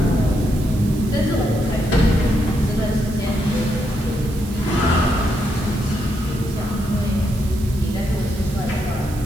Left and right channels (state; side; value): noise; right; hiss, 17 dB below the sound